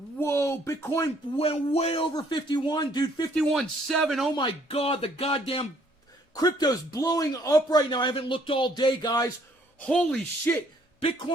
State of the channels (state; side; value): normal; both; correlation 0.64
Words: Bitcoin went way over 51, dude. 51.7. Oh my God, the goddamn crypto's blowing up right now. I haven't looked all day, guys. Holy shit.